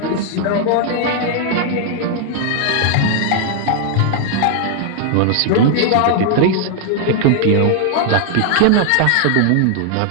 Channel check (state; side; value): different; both; correlation 0.00